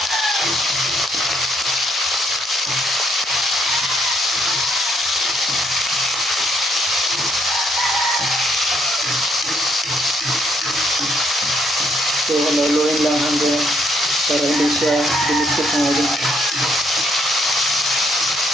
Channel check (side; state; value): both; normal; correlation 0.71